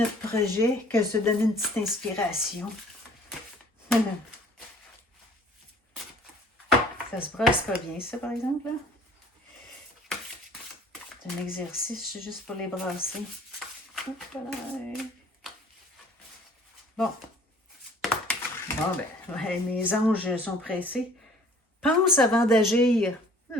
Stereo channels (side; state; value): both; normal; correlation 0.53